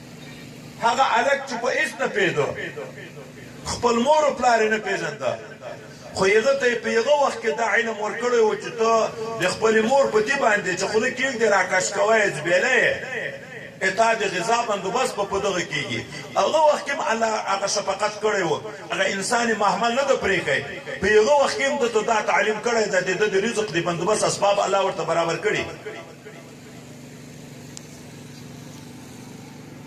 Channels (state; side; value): identical; both; correlation 1.00